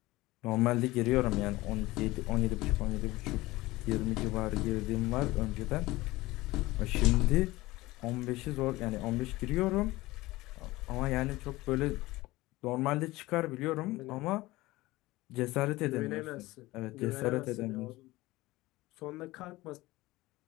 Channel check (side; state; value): right; quieter; 19.4 dB